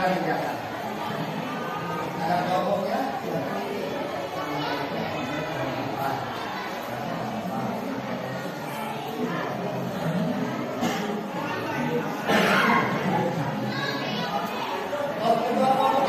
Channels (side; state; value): both; identical; correlation 1.00